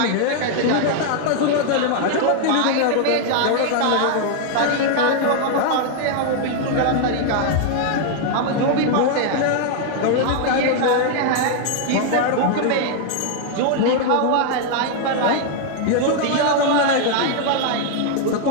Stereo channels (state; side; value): different; both; correlation 0.00